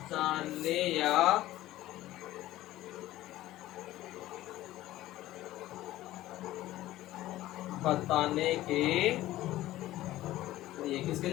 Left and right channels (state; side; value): quieter; right; 15.4 dB